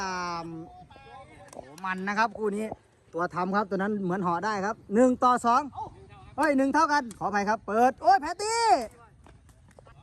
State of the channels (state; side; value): identical; both; correlation 1.00